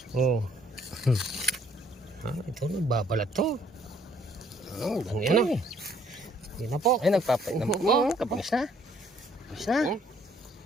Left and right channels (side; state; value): both; normal; correlation 0.63